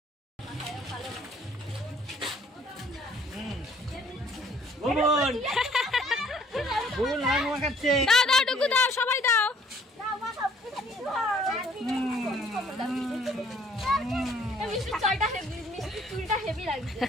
দাও ডুগু দাও, সবাই দাও। হেভি লাগছে।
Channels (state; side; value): normal; both; correlation 0.60